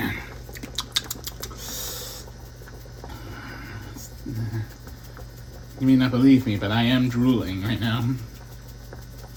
You may not believe me, but I am drooling right now.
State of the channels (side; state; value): both; identical; correlation 1.00